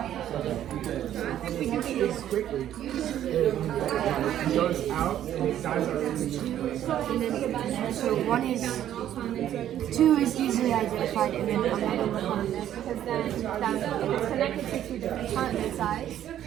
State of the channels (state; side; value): quieter; left; 11.3 dB